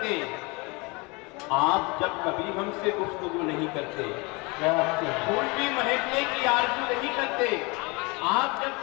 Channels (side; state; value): right; quieter; 27.5 dB